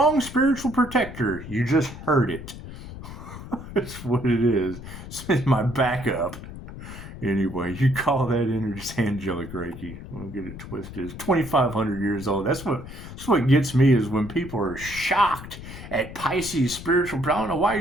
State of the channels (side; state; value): left; noise; rumble, 12 dB below the sound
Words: spiritual protector. You just heard it. That's what it is. It's my backup. Anyway, you call that energy angelic Reiki. Don't get it twisted. It's 2,500 years old. That's what gets me is when people are shocked at Pisces spiritual. I don't know why